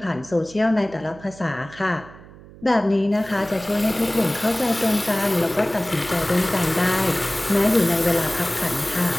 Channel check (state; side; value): noise; right; hum, 20 dB below the sound